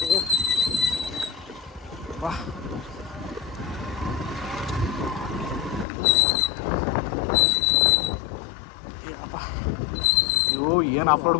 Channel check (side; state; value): right; drops out; at 5.9 s